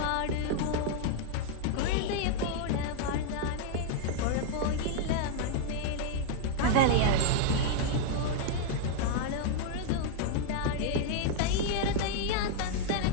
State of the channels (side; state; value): both; different; correlation 0.00